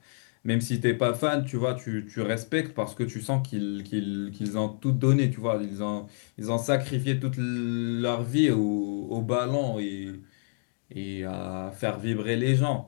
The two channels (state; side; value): silent; right; digital silence